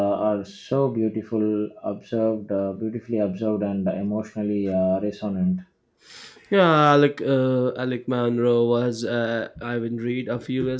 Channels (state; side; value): identical; both; correlation 1.00